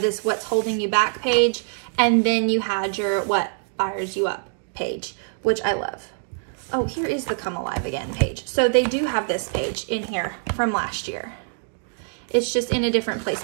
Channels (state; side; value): silent; left; digital silence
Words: this What's Holding You Back page, and then you had your What Fires You Up page, which I love. Oh, here is the Come Alive Again page. So they do have this page in here from last year. It's just in a different